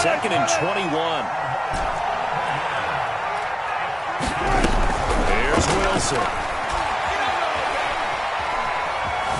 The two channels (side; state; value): both; identical; correlation 1.00